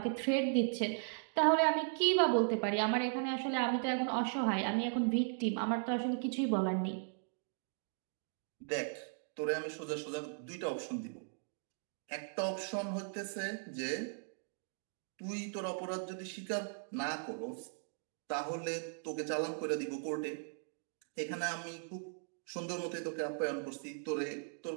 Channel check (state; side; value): silent; left; digital silence